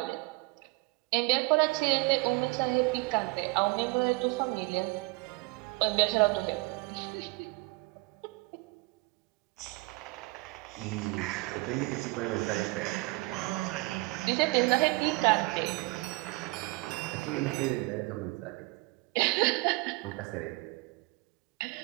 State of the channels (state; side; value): quieter; left; 25.6 dB